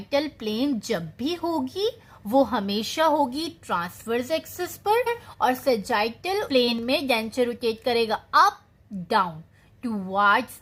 प्लेन जब भी होगी वो हमेशा होगी ट्रांसवर्स एक्सिस पर, और सजाइटल प्लेन में डेंचर रोटेट करेगा up down, towards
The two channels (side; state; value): both; identical; correlation 1.00